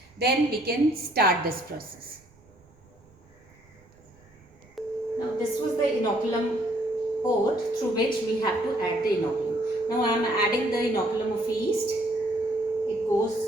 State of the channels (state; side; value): noise; right; rumble, 29 dB below the sound